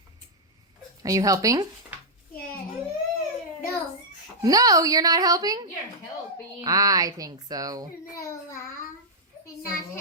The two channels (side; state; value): both; normal; correlation -0.07